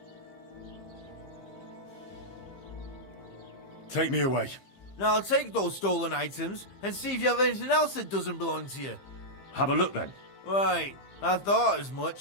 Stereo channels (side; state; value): right; late; 15 ms